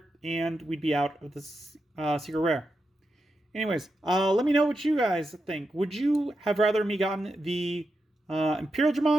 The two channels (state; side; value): normal; both; correlation 0.87